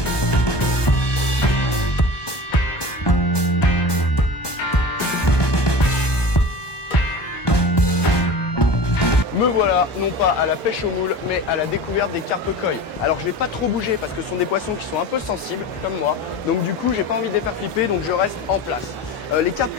Me voilà, non pas à la pêche aux moules, mais à la découverte des carpes koi. Alors je vais pas trop bouger parce que ce sont des poissons qui sont un peu sensibles, comme moi. Donc du coup, j'ai pas envie de les faire flipper, donc je reste en place. Les carpes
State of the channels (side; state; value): right; late; 1.2 ms